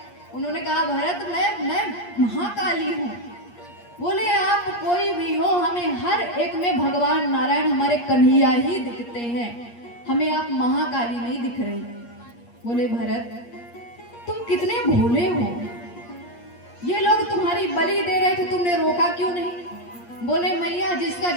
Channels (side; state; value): right; late; 8.5 ms